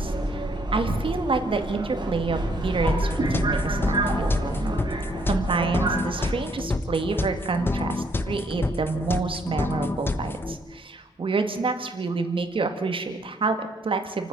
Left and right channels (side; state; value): both; normal; correlation 0.68